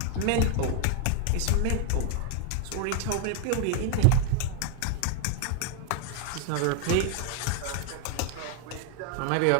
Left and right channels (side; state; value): both; different; correlation 0.00